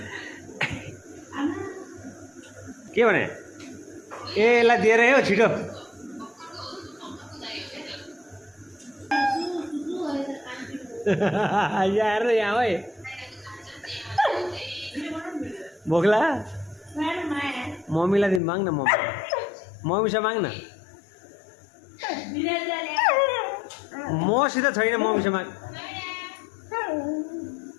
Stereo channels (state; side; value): drops out; right; at 18.4 s